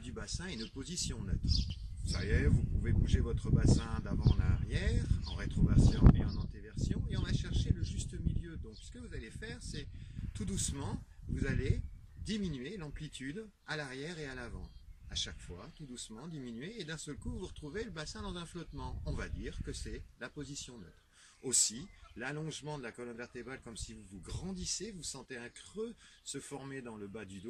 bassin et une position neutre. Ça y est, vous pouvez bouger votre bassin d'avant en arrière, en rétroversion et en antéversion, et on va chercher le juste milieu. Donc ce que vous allez faire, c'est tout doucement, vous allez diminuer l'amplitude à l'arrière et à l'avant. À chaque fois, tout doucement, diminuer, et d'un seul coup, vous retrouvez le bassin dans un flottement. On va dire que c'est la position neutre. Aussi, l'allongement de la colonne vertébrale, comme si vous grandissez, vous sentez un creux se former dans le bas du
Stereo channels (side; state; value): both; identical; correlation 1.00